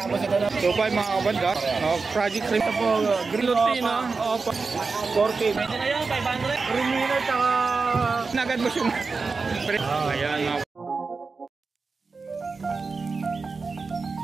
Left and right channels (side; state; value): left; quieter; 4.4 dB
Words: ito na. 2.5 mga kabanda. Project cream ito po. Green Lutino. 40. Pwede na yun, 500. Remino tsaka... Nagad mo yung... Ayan, mga